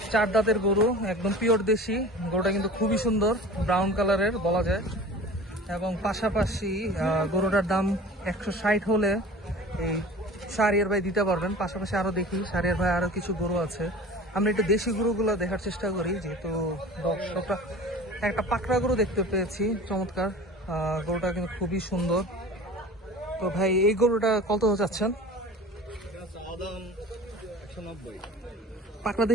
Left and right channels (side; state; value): both; normal; correlation 0.39